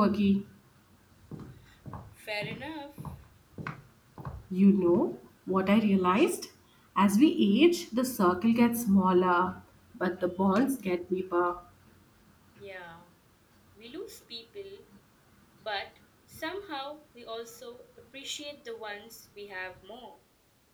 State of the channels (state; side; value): identical; both; correlation 1.00